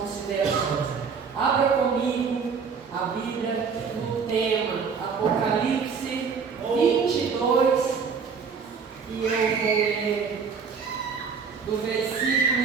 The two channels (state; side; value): quieter; left; 5.8 dB